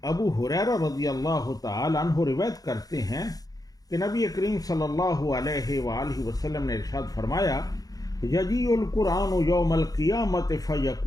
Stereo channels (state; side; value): late; right; 0.18 ms